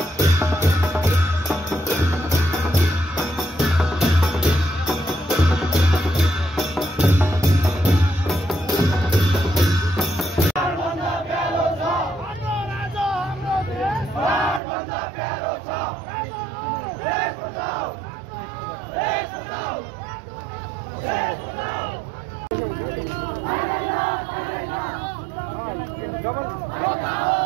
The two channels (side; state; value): left; drops out; at 14.6 s